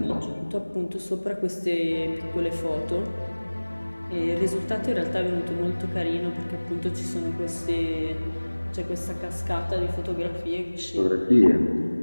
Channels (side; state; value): both; inverted; correlation -1.00